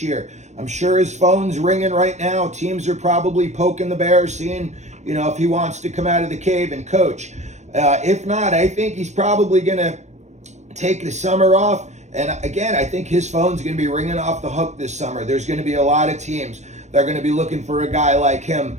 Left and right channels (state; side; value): late; left; 0.33 ms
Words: year. I'm sure his phone's ringing right now. Teams are probably poking the bear, seeing, you know, if he wants to come out of the cave and coach. If not, I think he's probably going to take the summer off. And again, I think his phone's going to be ringing off the hook this summer. There's going to be a lot of teams that are going to be looking for a guy like him